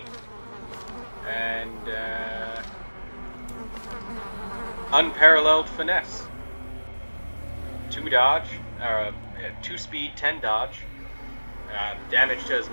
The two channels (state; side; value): inverted; both; correlation -1.00